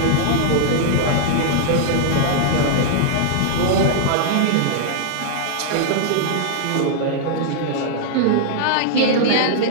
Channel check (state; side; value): different; both; correlation -0.01